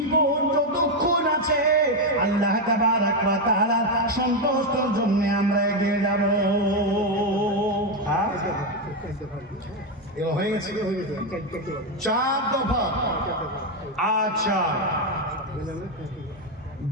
যতক্ষণ আছে আল্লাহ তাবারক ওয়া তাআলার সন্তুষ্টির জন্য আমরা এগিয়ে যাব। এগুলো হয়ে গেছে, 4 দফা। আচ্ছা,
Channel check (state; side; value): normal; both; correlation 0.06